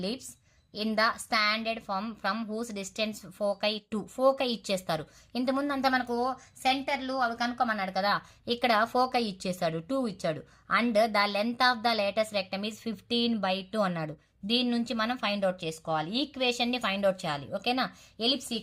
in the standard form from whose distance foci two. Foci ఇచ్చేస్తారు. ఇంతకుముందు అంతా మనకు సెంటర్లు అవి కనుక్కోమన్నాడు కదా, ఇక్కడ ఫోకై ఇచ్చేసాడు, 2 ఇచ్చాడు. And the length of the latus rectum is 15/2 అన్నాడు. దీని నుంచి మనం ఫైండ్ అవుట్ చేసుకోవాలి, ఈక్వేషన్ ని ఫైండ్ అవుట్ చేయాలి, ఓకేనా? Ellipse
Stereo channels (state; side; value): identical; both; correlation 1.00